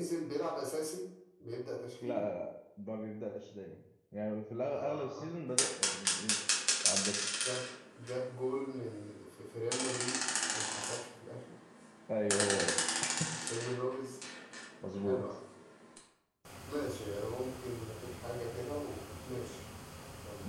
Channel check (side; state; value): both; identical; correlation 1.00